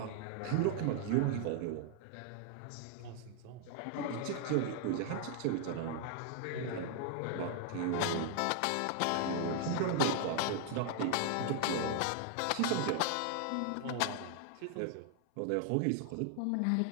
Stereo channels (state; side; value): different; both; correlation 0.00